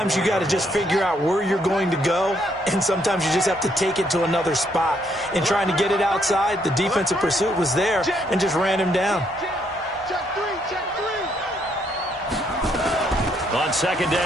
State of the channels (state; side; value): normal; both; correlation 0.72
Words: you got to just figure out where you're going to go, and sometimes you just have to take it to another spot. In trying to get it outside, the defensive pursuit was there and just ran him down. On 2nd